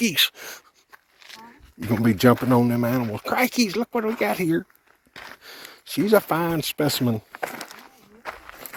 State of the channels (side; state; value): both; identical; correlation 1.00